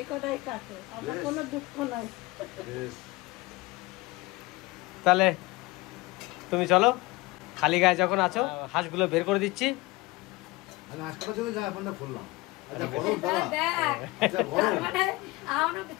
কটাই কাটো, আমার কোনো দুঃখ নাই। তাহলে তুমি চলো, খালি গায়ে যখন আছো হাঁসগুলো বের করে দিচ্ছি। আমি হাঁস কাটার জন্য জামা প্যান্টটা খুললাম। আচ্ছা দেখ, তার মানে আমার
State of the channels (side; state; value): right; quieter; 21.9 dB